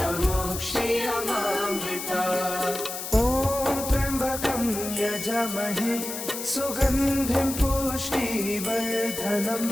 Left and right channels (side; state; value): left; noise; hiss, 7 dB below the sound